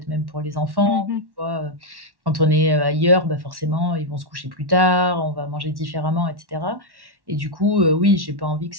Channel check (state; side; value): late; left; 1.1 ms